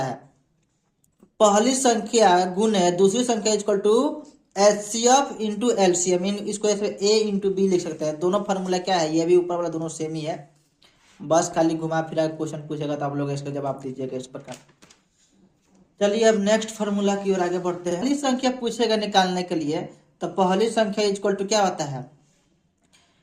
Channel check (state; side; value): identical; both; correlation 1.00